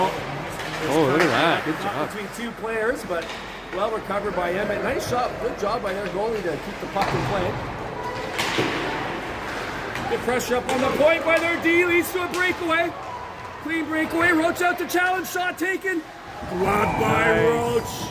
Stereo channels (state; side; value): identical; both; correlation 1.00